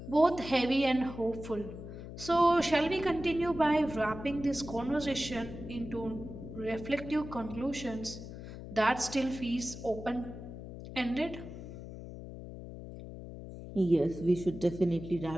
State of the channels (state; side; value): noise; left; hum, 11 dB below the sound